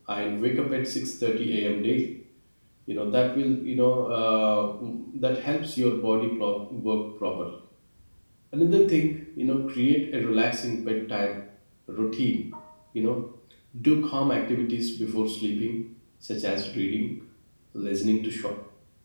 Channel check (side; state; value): both; inverted; correlation -1.00